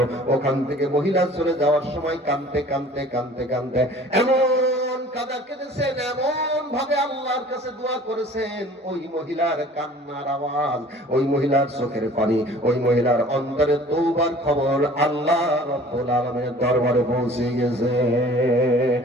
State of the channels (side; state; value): both; normal; correlation 0.48